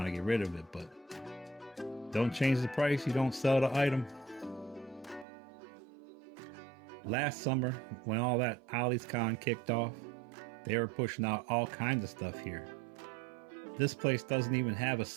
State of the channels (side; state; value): left; drops out; at 5.2 s